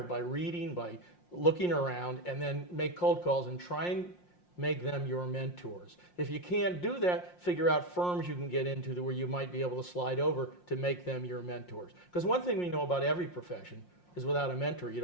by reading, by looking around, and then make cold calls and try and make them your mentors. If you can't do that, figure out firms you can get into where you might be able to slide over to make them your mentors. Because one thing we know about every profession is without a mentor, you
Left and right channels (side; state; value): right; late; 5.6 ms